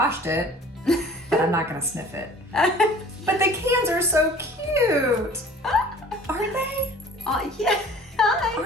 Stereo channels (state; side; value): normal; both; correlation 0.48